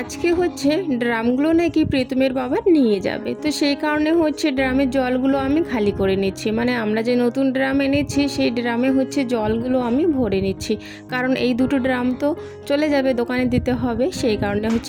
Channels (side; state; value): both; identical; correlation 1.00